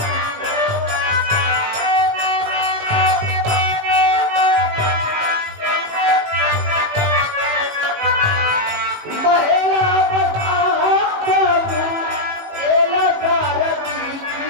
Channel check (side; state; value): left; late; 18 ms